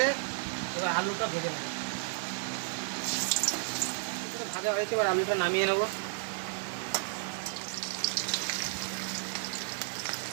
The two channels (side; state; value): left; silent; digital silence